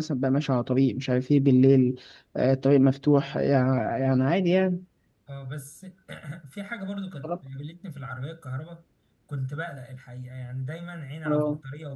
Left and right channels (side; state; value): both; identical; correlation 1.00